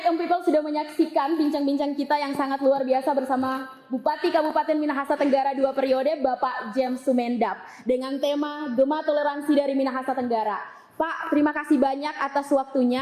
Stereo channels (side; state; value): both; identical; correlation 1.00